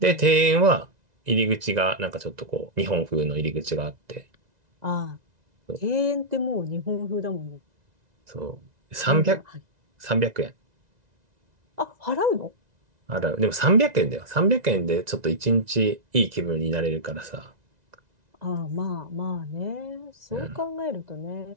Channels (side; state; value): left; late; 1.9 ms